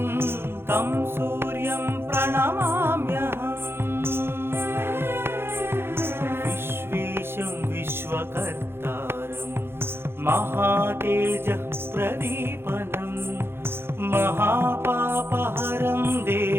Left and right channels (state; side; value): late; left; 0.11 ms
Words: तं सूर्यं प्रणमाम्यहम् विश्वेशं विश्वकर्तारं महातेजः प्रदीपनं महापापहरं